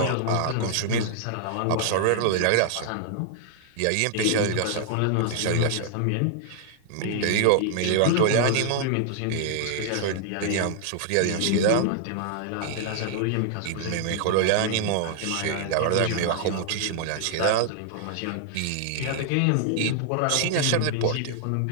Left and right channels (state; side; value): different; both; correlation -0.01